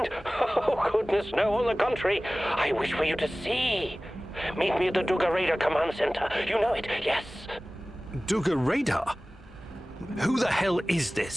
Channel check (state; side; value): normal; both; correlation 0.98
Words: Oh, goodness, no, on the contrary. I wish for you to see. Meet me at the Duga Radar Command Center. You know it, yes. Duga Radar? Who the hell is